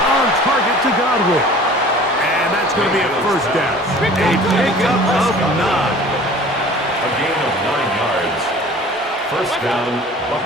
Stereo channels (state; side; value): normal; both; correlation 0.46